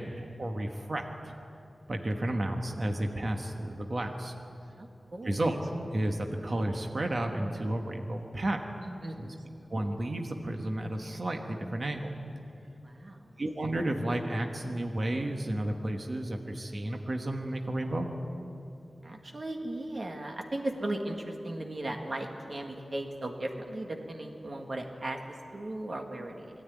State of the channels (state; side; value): normal; both; correlation 0.97